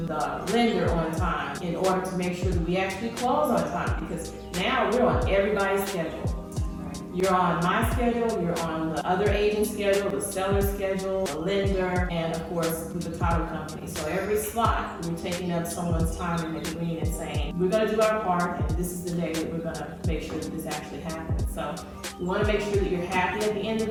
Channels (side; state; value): both; identical; correlation 1.00